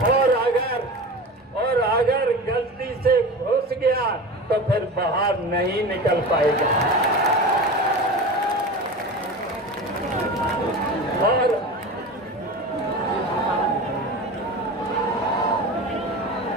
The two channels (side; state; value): both; normal; correlation 0.31